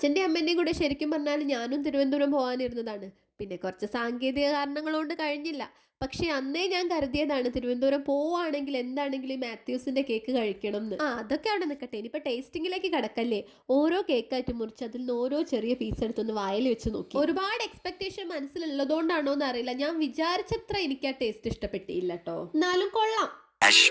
അമ്മേന്റെയും കൂടെ ശരിക്കും പറഞ്ഞാൽ ഞാനും തിരുവനന്തപുരം പോകാനിരുന്നതാണ്. പിന്നെ കുറച്ച് സാങ്കേതിക കാരണങ്ങൾ കൊണ്ട് കഴിഞ്ഞില്ല. പക്ഷെ അന്നേ ഞാൻ കരുതിയതാണ് തിരുവനന്തപുരം പോവുകയാണെങ്കിൽ എന്താണെങ്കിലും മാത്യൂസിന്റെ കേക്ക് കഴിക്കണം എന്ന്. അതൊക്കെ അവിടെ നിൽക്കട്ടെ, ഇനിയിപ്പോൾ ടേസ്റ്റിങ്ങിലേക്ക് കടക്കല്ലേ. ഓരോ കേക്കായിട്ട് മുറിച്ച് അതിൽ നിന്ന് ഓരോ ചെറിയ പീസ് എടുത്തൊന്ന് വായിൽ വെച്ച് നോക്കി. ഒരുപാട് എക്സ്പെക്ടേഷൻ മനസ്സിലുള്ളതുകൊണ്ടാണോ എന്ന് അറിയില്ല, ഞാൻ വിചാരിച്ചത്ര എനിക്ക് ആ ടേസ്റ്റ് ഇഷ്ടപ്പെട്ടില്ല കേട്ടോ. എന്നാലും കൊള്ളാം.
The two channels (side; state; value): both; identical; correlation 1.00